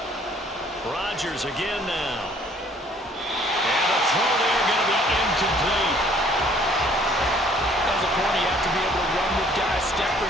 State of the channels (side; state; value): both; normal; correlation 0.58